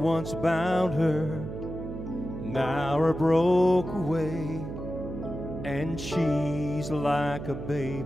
bound her now are broke away, and she's like a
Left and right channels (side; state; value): right; noise; hum, 8 dB below the sound